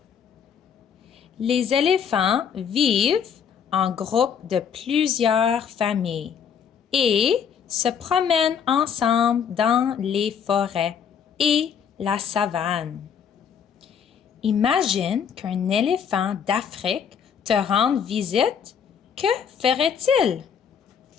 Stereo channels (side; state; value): right; quieter; 7.4 dB